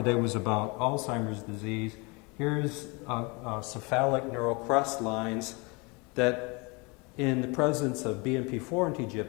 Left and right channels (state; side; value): quieter; right; 28.5 dB